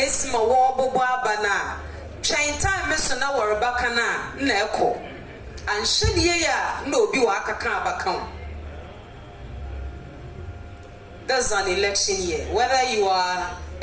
my war bana chain time na warabakana neko and should no be waka. That's an election year. Whether you are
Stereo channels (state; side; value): identical; both; correlation 1.00